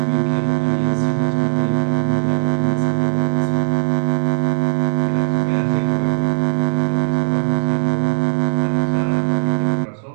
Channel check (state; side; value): silent; left; digital silence